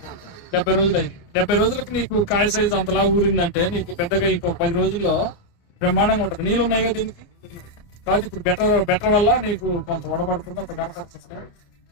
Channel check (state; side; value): late; right; 29 ms